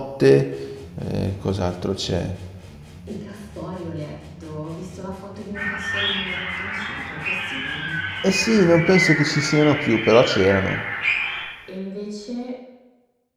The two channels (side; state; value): both; identical; correlation 1.00